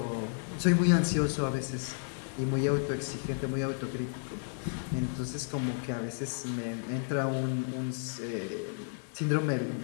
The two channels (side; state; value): right; silent; 56 dB below the other